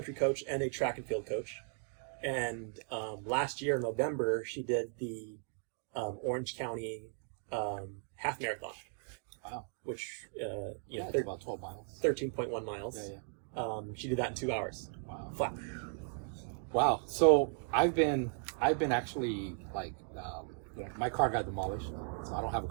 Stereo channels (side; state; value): left; silent; 53 dB below the other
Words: coach and a track and field coach. And last year in November, she did the Orange County half marathon. Wow. Which, It's about 12 miles. 13.1 miles. Yeah. She did that in 2 hours. Wow. Flat. Wow. So I've been actually like, my car got demolished, so I don't have a